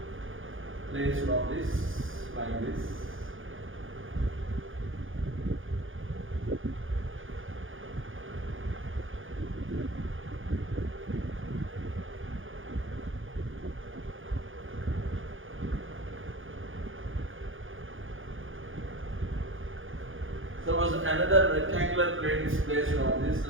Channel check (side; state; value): left; late; 0.58 ms